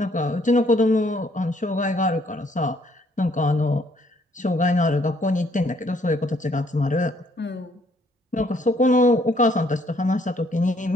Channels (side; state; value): both; normal; correlation 0.66